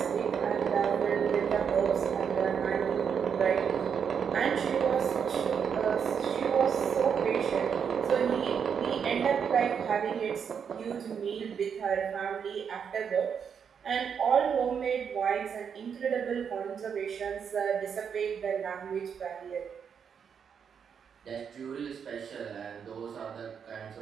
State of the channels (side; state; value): left; quieter; 7.1 dB